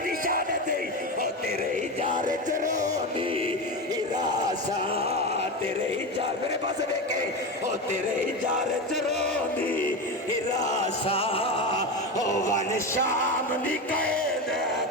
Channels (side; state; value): both; normal; correlation 0.20